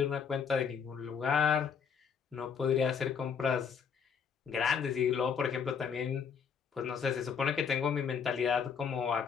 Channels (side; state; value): right; quieter; 6.7 dB